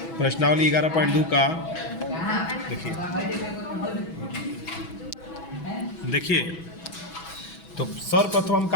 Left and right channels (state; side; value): late; right; 6.1 ms